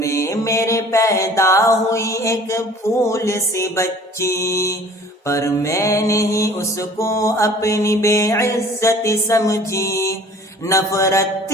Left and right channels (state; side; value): normal; both; correlation 0.49